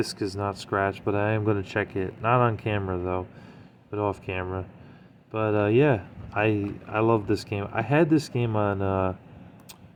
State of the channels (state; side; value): identical; both; correlation 1.00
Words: is not scratched, but I am going to check it. Not on camera, though, but off camera. But, yeah, I love this game. I had this game on